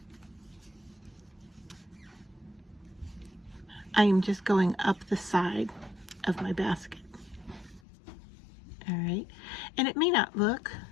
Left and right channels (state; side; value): drops out; right; at 7.8 s